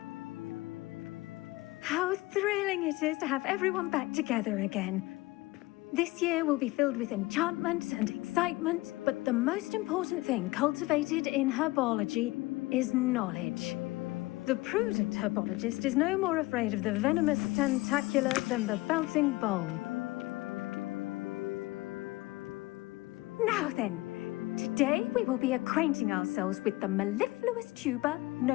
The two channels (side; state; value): right; quieter; 20.8 dB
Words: How thrilling it is to have everyone back together again. This year will be filled with enchantment and excitement, but the most important thing cultivated in herbology is knowledge. The prudent herbologist is no more afraid of the venomous tentacula than the bouncing bowl. Now then, today we will be acquainting ourselves with the mellifluous tuber